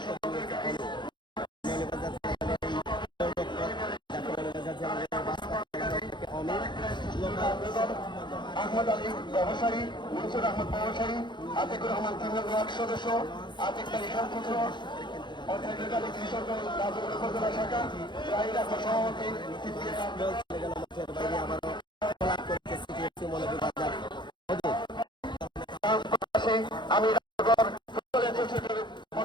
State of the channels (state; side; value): late; right; 0.22 ms